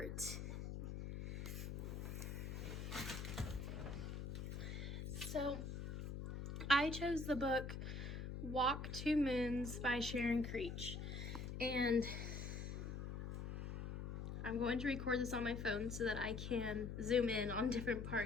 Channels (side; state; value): left; noise; hum, 5 dB below the sound